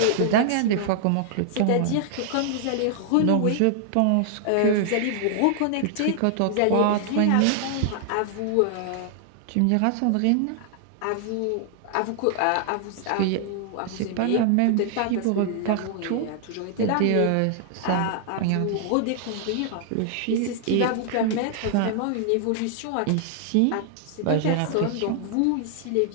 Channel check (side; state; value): both; different; correlation 0.00